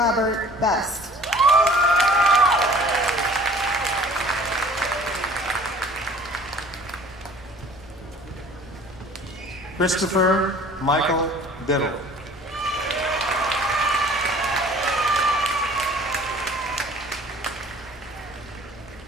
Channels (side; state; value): both; normal; correlation 0.50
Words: Best. Christopher Michael Biddle.